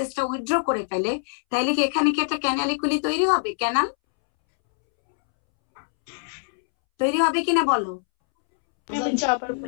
উইথড্র করে ফেলে, তাহলে কি এখানে কি একটা ক্যানালিকুলি তৈরি হবে? ক্যানাল তৈরি হবে কিনা বলো? আবার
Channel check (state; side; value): silent; right; 63 dB below the other